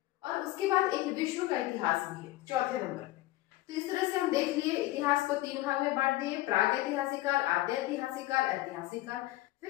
और उसके बाद एक विश्व का इतिहास भी है चौथे नंबर पे। तो इस तरह से हम देख लिए, इतिहास को तीन भाग में बांट दिए, प्राग ऐतिहासिक काल, आद्य ऐतिहासिक काल, ऐतिहासिक काल।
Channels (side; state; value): right; quieter; 17.1 dB